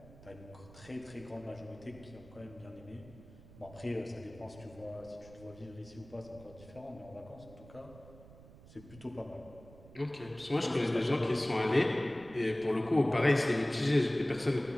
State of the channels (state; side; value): noise; right; rumble, 20 dB below the sound